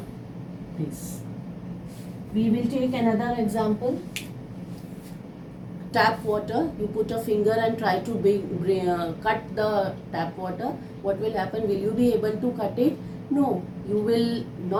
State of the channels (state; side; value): identical; both; correlation 1.00